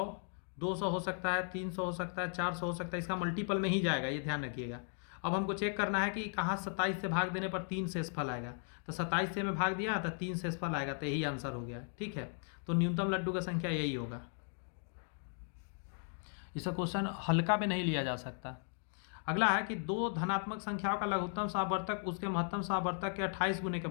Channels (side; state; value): right; silent; 53 dB below the other